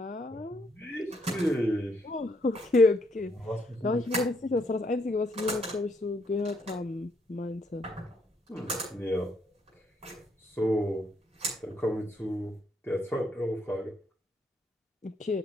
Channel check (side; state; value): both; normal; correlation 0.73